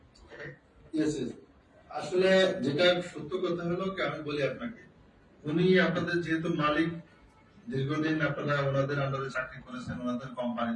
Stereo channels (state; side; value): identical; both; correlation 1.00